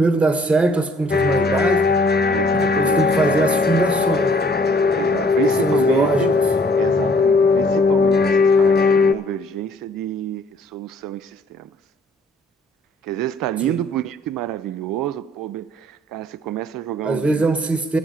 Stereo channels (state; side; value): normal; both; correlation 0.59